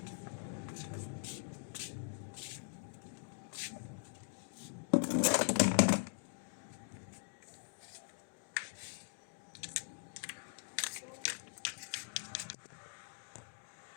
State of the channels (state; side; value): silent; right; digital silence